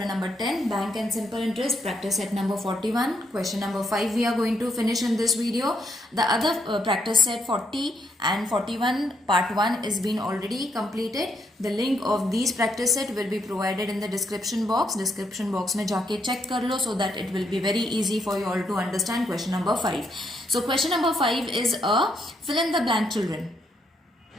number 10, Bank and Simple Interest, practice set number 41. Question number 5 we are going to finish in this video. The other practice set 40 and 41 part 1 is been already completed. The link of these practice set will be provided in the description box. Description box में जाके check कर लो so that it will be very easy for you all to understand question number 5. So question number 5 is a fill in the blank children.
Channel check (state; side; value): normal; both; correlation 0.76